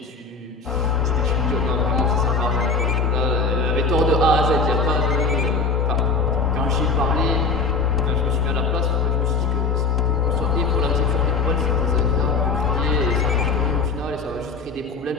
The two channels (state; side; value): quieter; right; 4.4 dB